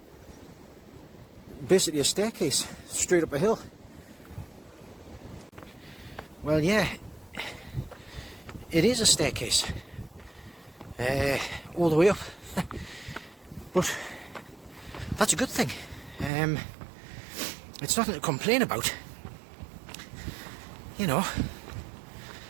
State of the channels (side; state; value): left; drops out; at 16.3 s